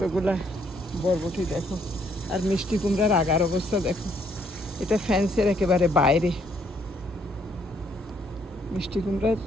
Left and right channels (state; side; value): normal; both; correlation 0.68